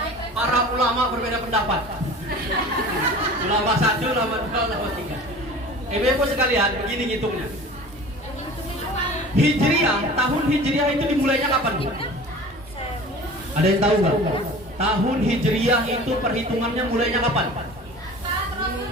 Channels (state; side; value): normal; both; correlation 0.40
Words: Para ulama berbeda pendapat. Ulama 1, ulama 2, ulama 3. Ibu-ibu sekalian, begini ngitungnya. Hijriah, tahun Hijriah itu dimulainya kapan, Bu? Ada yang tahu nggak? Tahun Hijriah itu perhitungannya mulainya kapan?